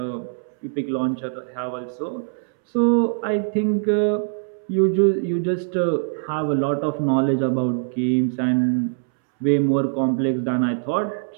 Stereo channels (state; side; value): silent; left; 64 dB below the other